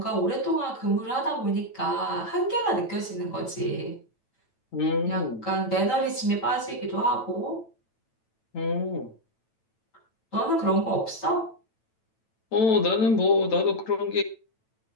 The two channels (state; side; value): late; right; 9.0 ms